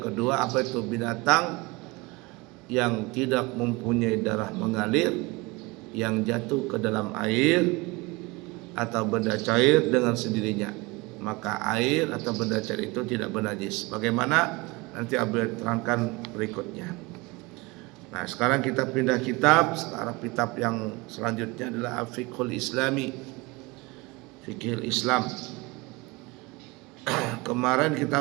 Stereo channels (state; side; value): quieter; left; 24.4 dB